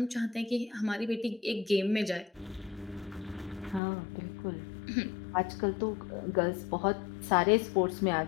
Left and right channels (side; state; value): right; drops out; at 3.8 s